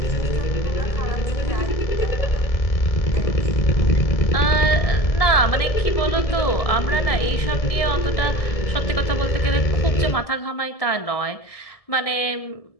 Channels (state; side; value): late; right; 1.7 ms